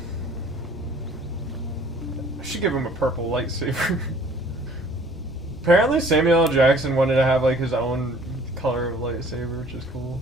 I should give him a purple lightsaber. Apparently Samuel L. Jackson wanted to have like his own color of lightsaber, which is cool.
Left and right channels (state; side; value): normal; both; correlation 0.54